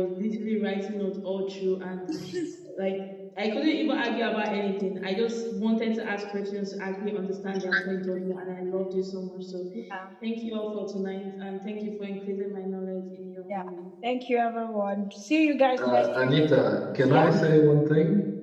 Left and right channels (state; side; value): identical; both; correlation 1.00